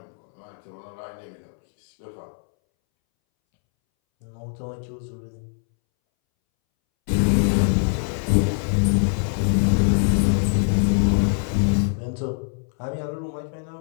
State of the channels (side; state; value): right; silent; 63 dB below the other